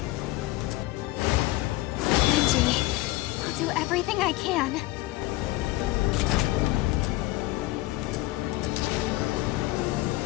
Angie, I'll do everything I can.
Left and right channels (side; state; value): right; quieter; 18.7 dB